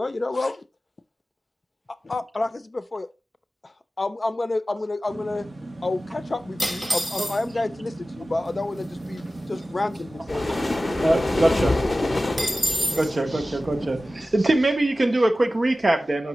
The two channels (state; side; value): normal; both; correlation 0.96